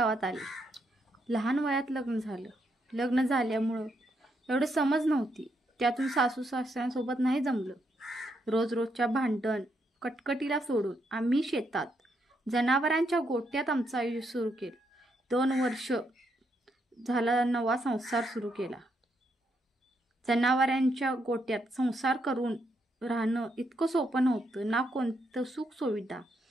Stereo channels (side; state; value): both; normal; correlation 0.78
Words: आले। लहान वयात लग्न झालं। लग्न झाल्यामुळं एवढं समज नव्हती, त्यातून सासू सासऱ्यांसोबत नाही जमलं। रोजच्या भांडण कटकटीला सोडून आम्ही शेतात जनावरांच्या गोट्यात आमचं आयुष्य सुरू केलं। 2 वर्ष झाला नवा संसार सुरू केला। जनावरांच्या गोट्यात संसार करून राहणं इतकं सोपं नव्हतं। ना कोणतं सुख सुविधा